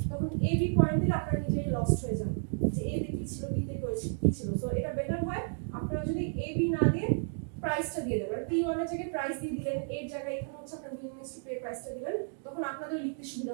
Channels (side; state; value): left; silent; digital silence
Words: তখন এ বি পয়েন্ট দিলে আপনারা নিজেই লস্ট হয়ে যান যে এ তে কি ছিল বি তে কি ছিল। সো এটা বেটার হয় আপনারা যদি এ বি না দিয়ে প্রাইসটা দিয়ে দেবেন, P1 এর জায়গায় প্রাইস দিয়ে দিলেন, এর জায়গায় এখানে হচ্ছে আপনার willingness to pay প্রাইসটা দিবেন, তখন আপনাদের লিখতে সুবিধা